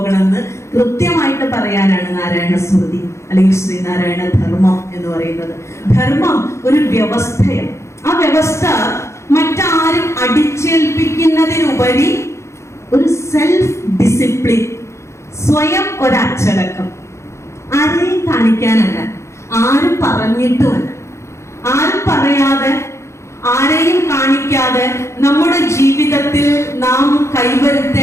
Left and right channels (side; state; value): right; late; 0.14 ms